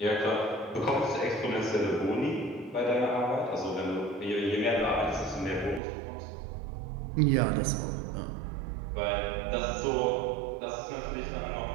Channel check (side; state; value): left; drops out; at 5.8 s